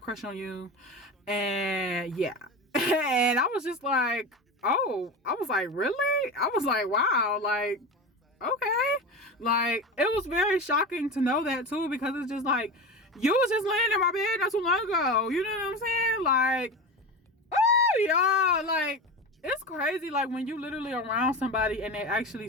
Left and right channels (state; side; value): normal; both; correlation 0.25